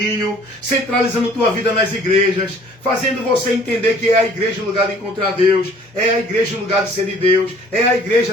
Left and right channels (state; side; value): normal; both; correlation 0.54